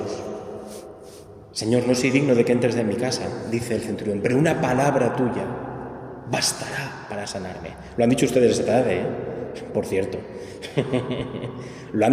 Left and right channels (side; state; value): both; identical; correlation 1.00